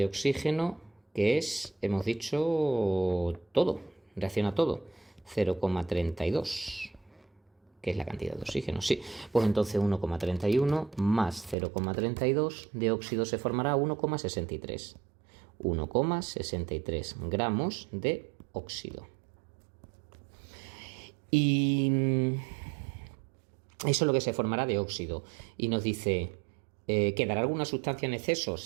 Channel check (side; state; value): left; drops out; at 11.6 s